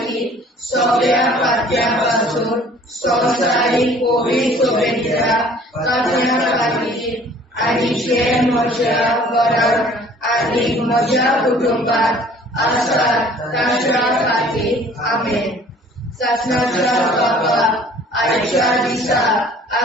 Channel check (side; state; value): both; normal; correlation 0.53